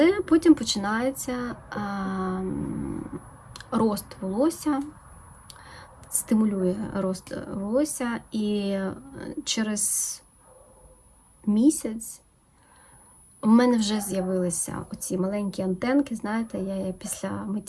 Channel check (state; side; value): identical; both; correlation 1.00